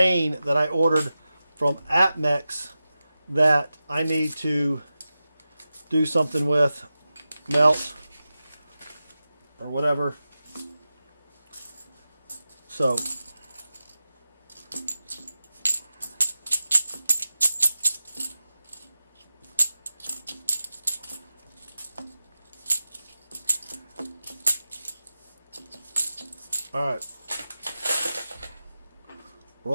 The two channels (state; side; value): inverted; both; correlation -0.94